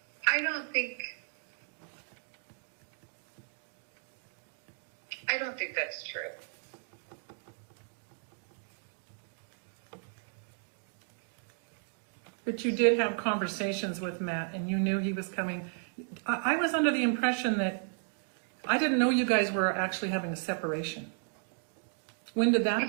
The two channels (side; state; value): left; silent; 55 dB below the other